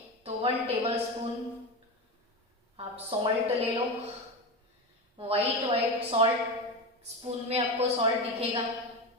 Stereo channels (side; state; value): both; normal; correlation 0.20